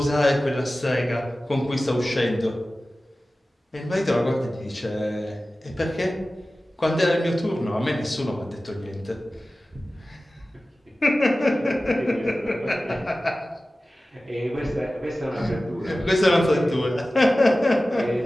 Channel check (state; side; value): normal; both; correlation 0.96